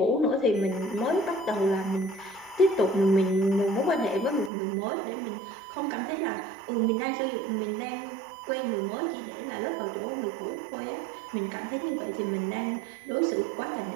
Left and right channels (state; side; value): drops out; left; at 4.5 s